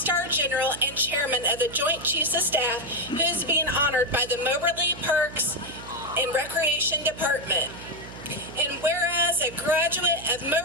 general and chairman of the Joint Chiefs of Staff, who is being honored by the Moberly Parks and Recreation Department. And whereas a graduate of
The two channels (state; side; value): noise; right; hum, 15 dB below the sound